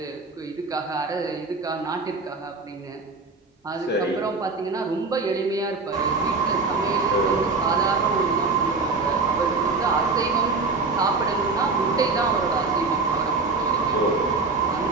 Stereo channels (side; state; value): left; quieter; 4.0 dB